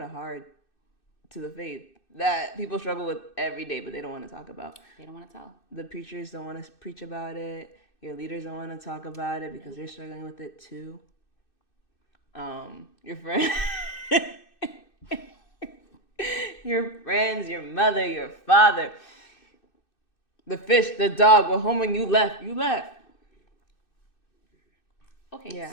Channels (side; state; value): right; late; 2.6 ms